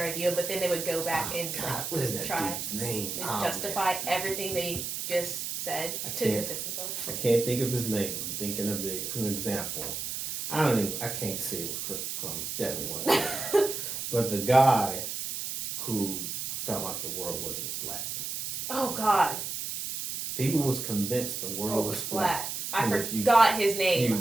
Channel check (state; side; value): noise; right; hiss, 4 dB below the sound